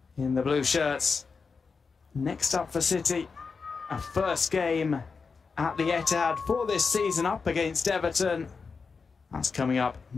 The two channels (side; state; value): right; quieter; 5.0 dB